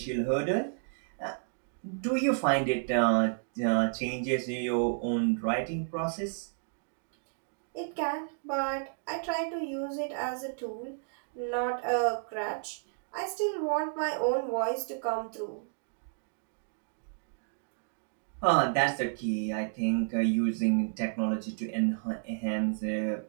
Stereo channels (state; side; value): silent; left; digital silence